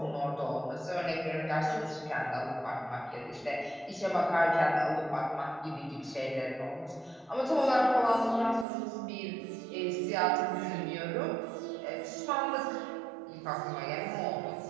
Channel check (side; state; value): left; drops out; at 8.7 s